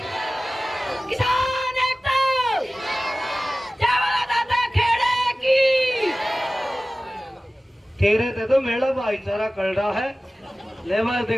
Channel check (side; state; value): both; normal; correlation 0.97